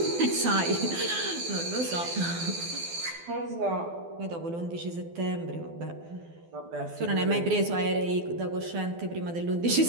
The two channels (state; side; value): late; left; 12 ms